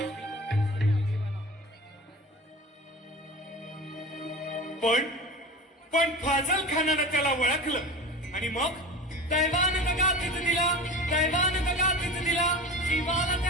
पण फाजल खानानं त्याला ओळखलं आणि मग दैवान दगा तिथं दिला, दैवान दगा तिथं दिला. शिवाला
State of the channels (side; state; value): both; normal; correlation 0.33